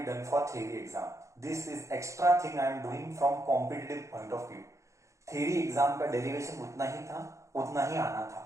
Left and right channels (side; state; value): left; late; 0.15 ms